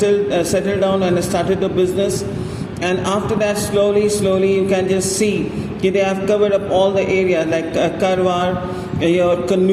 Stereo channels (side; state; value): both; identical; correlation 1.00